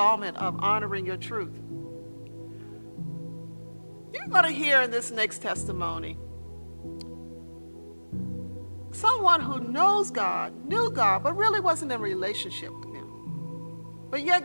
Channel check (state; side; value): inverted; both; correlation -1.00